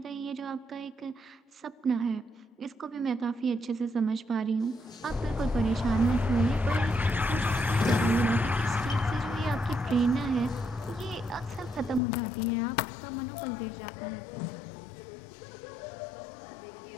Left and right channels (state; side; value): drops out; right; at 12.0 s